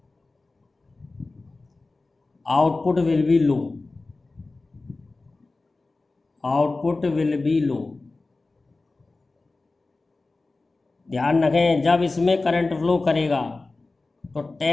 output will be low, output will be low। ध्यान रखें, जब इसमें करंट फ्लो करेगा तो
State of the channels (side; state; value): right; quieter; 3.4 dB